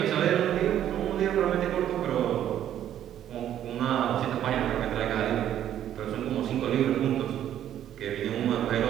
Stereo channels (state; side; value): quieter; left; 11.0 dB